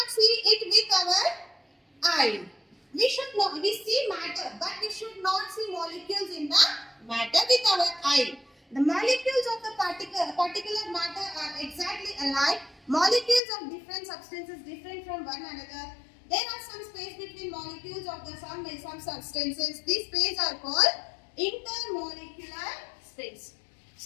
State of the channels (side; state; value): right; drops out; at 13.4 s